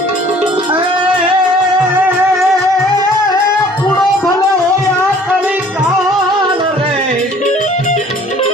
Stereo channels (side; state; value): both; normal; correlation 0.53